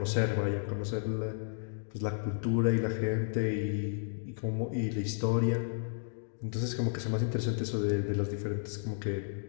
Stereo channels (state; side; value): silent; right; digital silence